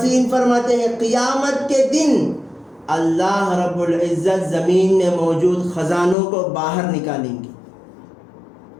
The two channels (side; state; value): right; drops out; at 6.2 s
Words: فرماتے ہیں قیامت کے دن اللہ رب العزت زمین میں موجود خزانوں کو باہر نکالیں گے۔